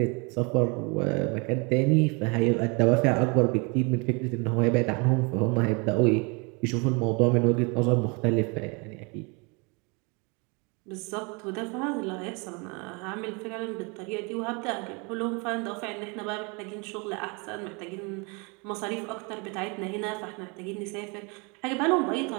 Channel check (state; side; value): quieter; left; 30.9 dB